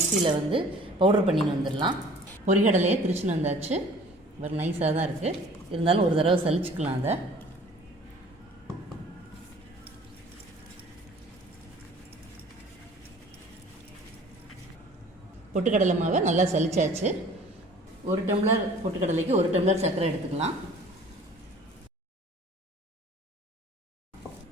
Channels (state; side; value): normal; both; correlation 0.50